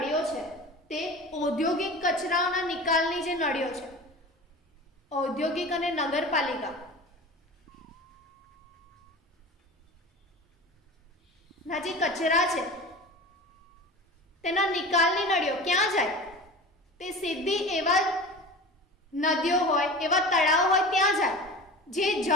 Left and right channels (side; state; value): both; normal; correlation 0.34